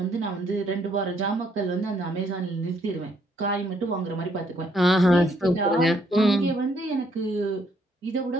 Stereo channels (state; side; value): normal; both; correlation 0.69